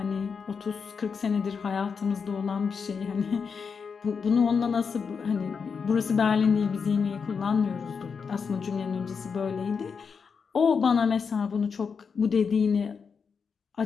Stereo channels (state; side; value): quieter; right; 5.8 dB